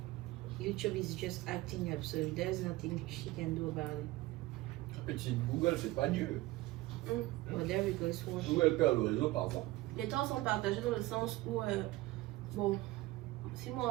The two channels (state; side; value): quieter; left; 18.6 dB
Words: YouTube is just acting up, so there's nothing she can do about it. Petit Google, c'est pas Dieu. Well, there we go, it's working. Google perd le réseau parfois. Les torts sont partagés dans le sens où, bon, si moi